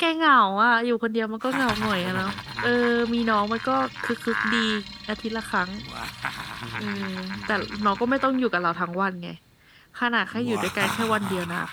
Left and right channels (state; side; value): identical; both; correlation 1.00